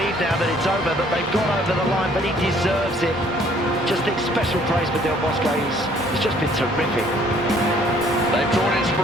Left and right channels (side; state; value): both; normal; correlation 0.60